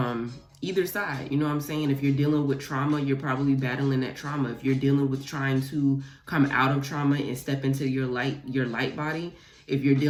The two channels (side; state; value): both; identical; correlation 1.00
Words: either side. You know what I'm saying? If you're dealing with trauma, you're probably battling that trauma. If you're dealing with trying to come out of trauma and step into your light body, if you're